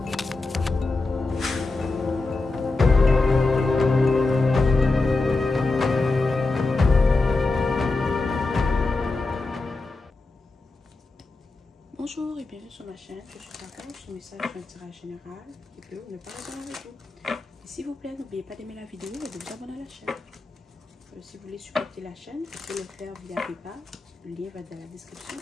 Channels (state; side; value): quieter; right; 3.4 dB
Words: et bienvenue sur ma chaîne. Je suis Kaka, ce message est un tirage général qui peut ou ne pas résonner avec vous. Et s'il vous plaît, n'oubliez pas d'aimer la vidéo et de vous abonner à la chaîne. Si vous voulez supporter la chaîne, vous pouvez le faire via PayPal. Le lien va dans la description